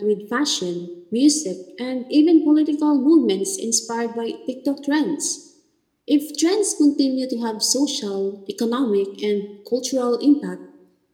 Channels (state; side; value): identical; both; correlation 1.00